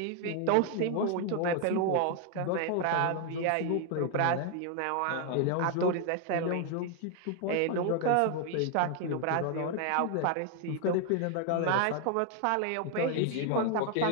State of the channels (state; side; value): different; both; correlation 0.00